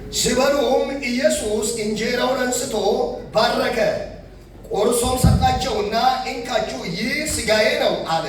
ሲበሉም ኢየሱስ እንጀራውን አንስቶ ባረከ፣ ቆርሶም ሰጣቸውና እንካችሁ ይህ ሥጋዬ ነው አለ።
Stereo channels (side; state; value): both; identical; correlation 1.00